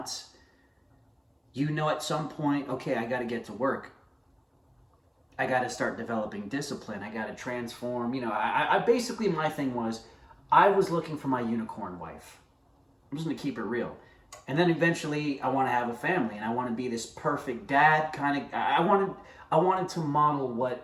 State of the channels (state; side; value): identical; both; correlation 1.00